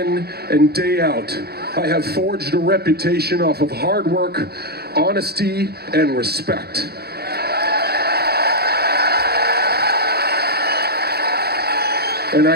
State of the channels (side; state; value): left; late; 0.46 ms